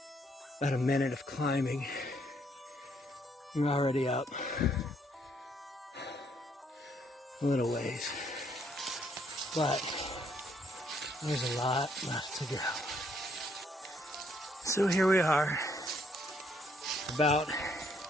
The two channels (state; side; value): normal; both; correlation 0.69